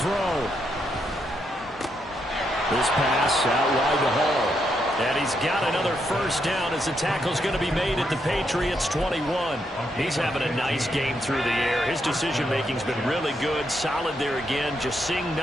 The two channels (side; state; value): both; normal; correlation 0.79